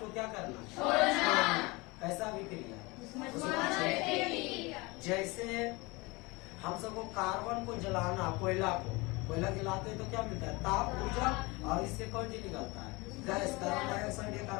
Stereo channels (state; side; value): quieter; right; 24.6 dB